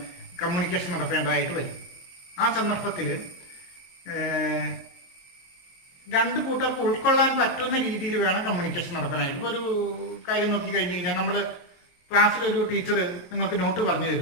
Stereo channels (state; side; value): late; right; 23 ms